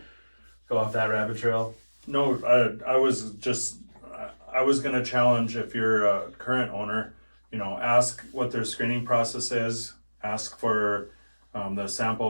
go off that rabbit trail? No, I was going to challenge if you're a current owner, you know, ask what their screening process is, ask for the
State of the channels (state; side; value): inverted; both; correlation -1.00